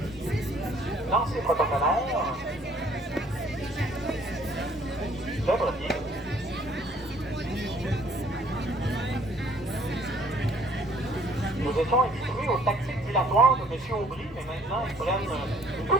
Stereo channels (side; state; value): both; normal; correlation 0.59